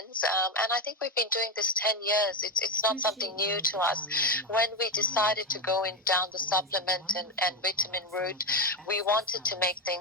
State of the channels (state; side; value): normal; both; correlation 0.14